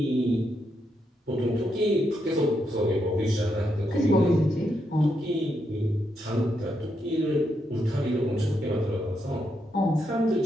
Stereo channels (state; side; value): normal; both; correlation 0.81